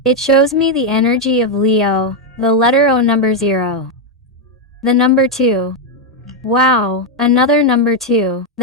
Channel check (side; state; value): both; normal; correlation 0.02